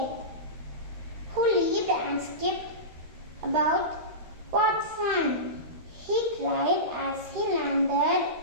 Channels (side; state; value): left; late; 13 ms